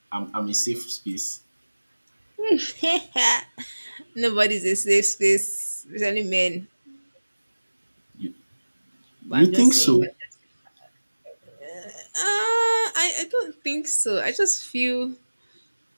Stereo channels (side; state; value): both; inverted; correlation -1.00